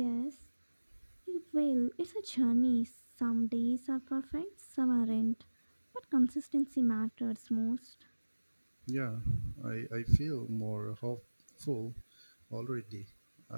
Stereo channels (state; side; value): inverted; both; correlation -1.00